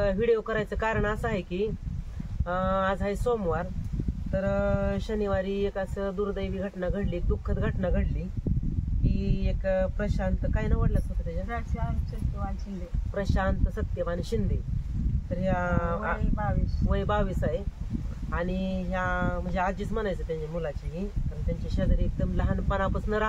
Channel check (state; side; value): identical; both; correlation 1.00